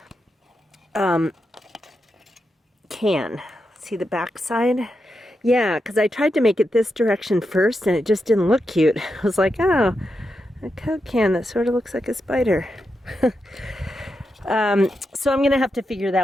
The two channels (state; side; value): normal; both; correlation 0.86